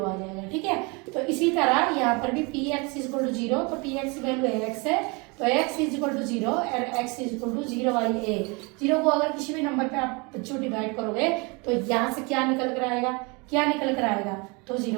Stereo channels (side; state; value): left; quieter; 29.2 dB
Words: आ जाएगा, ठीक है। तो इसी तरह यहाँ पर भी p x is equal to zero. तो पी एक्स की वैल्यू x है, तो x is equal to zero और x is equal to 0/a। 0 को अगर किसी भी नंबर पे आप बच्चों डिवाइड करोगे तो यहाँ से क्या निकल कर आएगा, तो